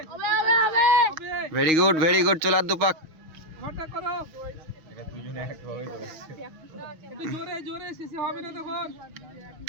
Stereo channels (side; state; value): left; late; 6.3 ms